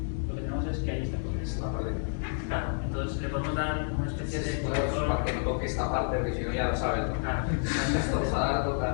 lo que tenemos es que ahí está el contexto. Claro, entonces le podemos dar una especie de... Para que no toque esta parte, porque si no ya lo sabes, ¿no? Claro.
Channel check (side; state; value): right; silent; digital silence